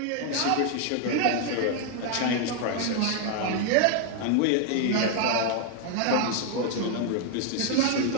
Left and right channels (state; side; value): different; both; correlation 0.00